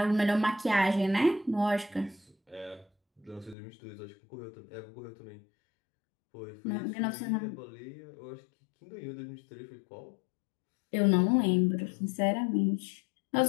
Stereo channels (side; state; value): right; drops out; at 3.6 s